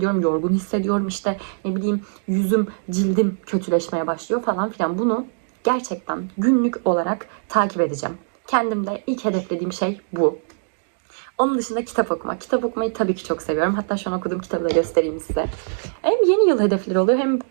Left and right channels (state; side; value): silent; left; digital silence